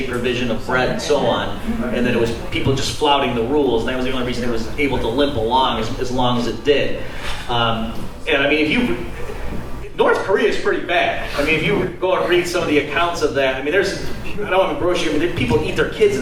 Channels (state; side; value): identical; both; correlation 1.00